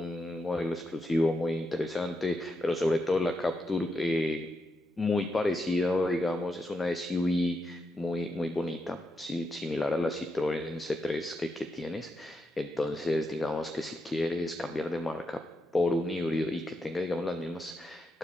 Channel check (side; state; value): both; normal; correlation 0.84